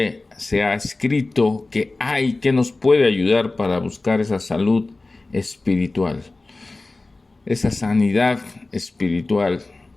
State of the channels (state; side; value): quieter; right; 3.2 dB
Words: se ha escrito, que hay, que nos puede ayudar para buscar esa salud espiritual, esa sanidad espiritual,